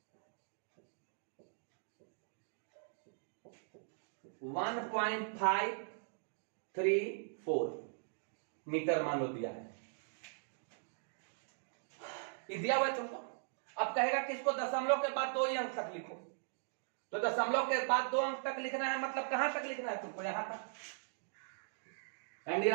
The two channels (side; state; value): left; silent; digital silence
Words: 1.534 मीटर मान लो दिया है, ये दिया हुआ है तुमको। अब कहेगा कि इसको दशमलव के बाद 2 ही अंक तक लिखो, तो दशमलव के बाद 2 अंक तक लिखना है, मतलब कहां तक लिखना है तुमको, यहां तक। एंड